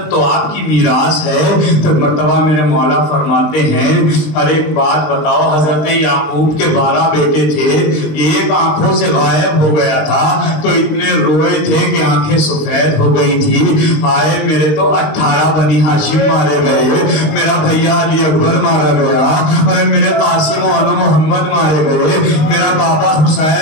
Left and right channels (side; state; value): right; late; 19 ms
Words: تو آپ کی میراث ہے. تو مرتبہ میرے مولا فرماتے ہیں ارے ایک بات بتاؤ, حضرت یعقوب کے 12 بیٹے تھے, ایک آنکھوں سے غائب ہو گیا تھا تو اتنے روئے تھے کہ آنکھیں سفید ہو گئی تھی. آئے میرے تو 18 بنی ہاشم مارے گئے, میرا بھیا علی اکبر مارا گیا, ارے میرے قاسم و محمد مارے گئے, میرا بابا